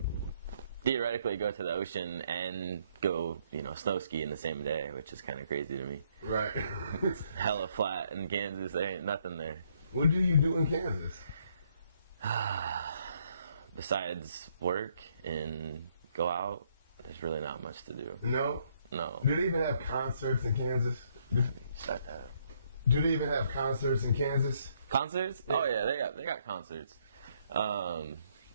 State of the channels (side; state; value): both; inverted; correlation -0.70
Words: theoretically go to the ocean and go, snow ski in the same day, which is kind of crazy to me. Right. It's hella flat in Kansas. There ain't nothing there. What do you do in Kansas? Besides work and go out, there's really not much to do. No? No. Do they even have concerts in Kansas? Shut that. Do they even have concerts in Kansas? Concerts? Yeah. Oh yeah, they got concerts. You